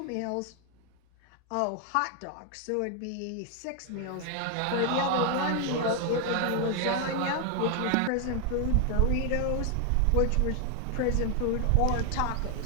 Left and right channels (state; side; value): different; both; correlation 0.00